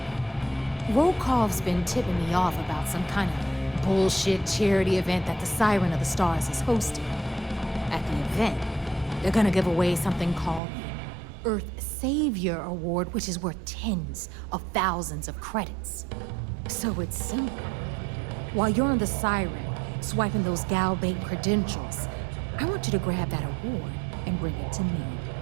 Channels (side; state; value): left; drops out; at 10.6 s